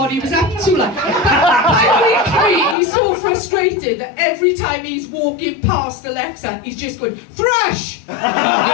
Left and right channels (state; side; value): drops out; right; at 2.8 s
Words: he was up to, like. By week 3, he's so frustrated that every time he's walking past Alexa, he's just going, thrush! Thrush!